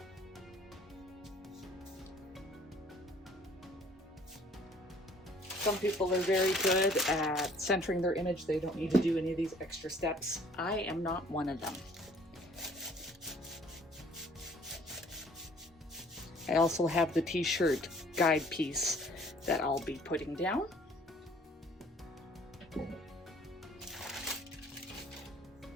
Some people are very good at centering their image. They don't need to do any of these extra steps. I am not one of them. I also have the t-shirt guide piece that I'll be putting down.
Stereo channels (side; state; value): both; normal; correlation 0.56